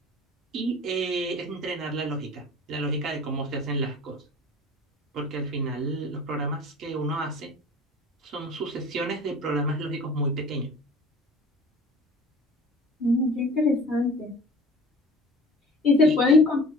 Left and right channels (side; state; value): both; normal; correlation 0.42